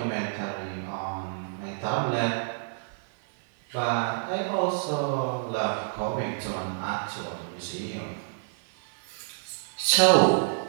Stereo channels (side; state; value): left; silent; digital silence